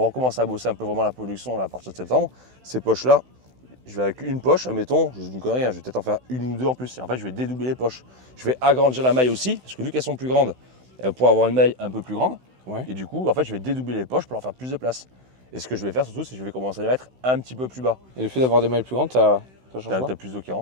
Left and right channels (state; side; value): late; left; 16 ms